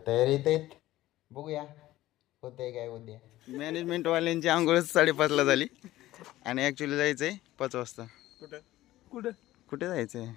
तयारीत आहेत. बघूया होतंय काय उद्या. मॅनेजमेंटवाल्यांची आंघोळच 5:30ला झाली आणि ॲक्च्युली जायचं आहे 5 वाजता. कुठं कुठं कुठे जायचं आहे?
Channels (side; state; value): right; quieter; 15.7 dB